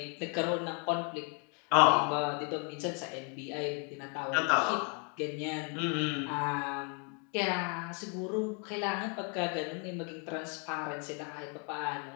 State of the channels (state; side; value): quieter; right; 37.2 dB